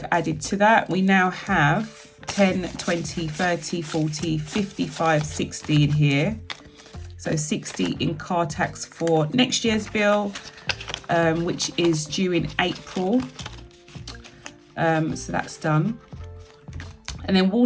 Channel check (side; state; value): both; identical; correlation 1.00